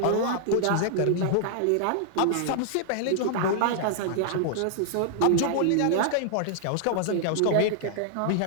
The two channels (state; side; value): different; both; correlation -0.01